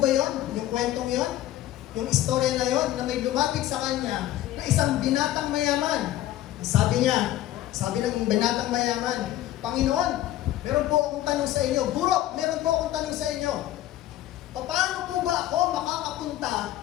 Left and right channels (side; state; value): right; quieter; 13.8 dB